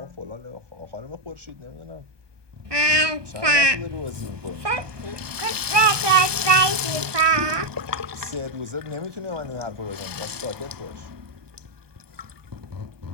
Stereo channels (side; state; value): left; late; 1.2 ms